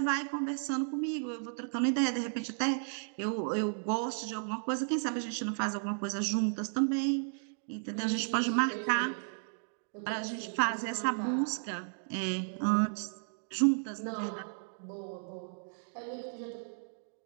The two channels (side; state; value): left; silent; digital silence